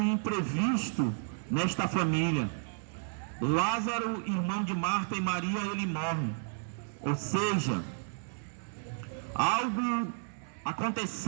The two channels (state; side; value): silent; left; 56 dB below the other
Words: imprevisto nesta família. Lázaro, irmão de Marta e Maria, ele morre. Ou seja, algo